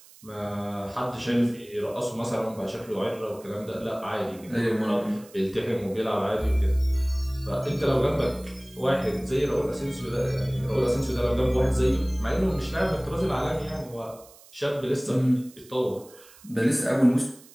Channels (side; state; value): right; noise; hiss, 23 dB below the sound